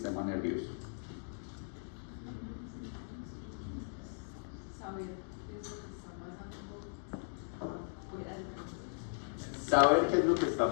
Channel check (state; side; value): silent; right; digital silence